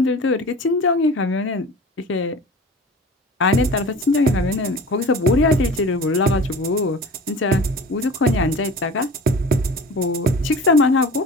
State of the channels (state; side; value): normal; both; correlation 0.39